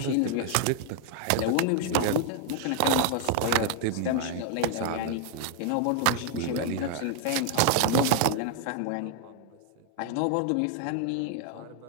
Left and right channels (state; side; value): different; both; correlation 0.00